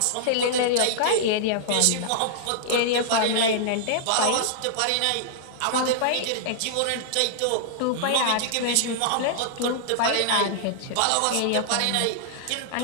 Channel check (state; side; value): different; both; correlation -0.01